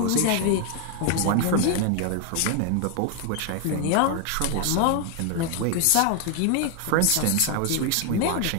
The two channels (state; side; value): different; both; correlation 0.00